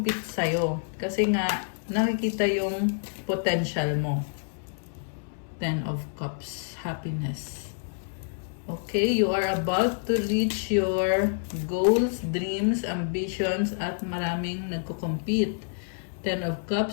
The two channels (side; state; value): right; silent; 59 dB below the other